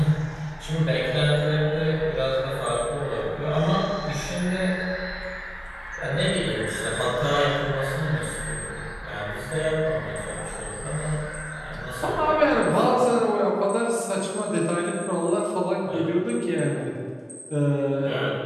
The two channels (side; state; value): both; identical; correlation 1.00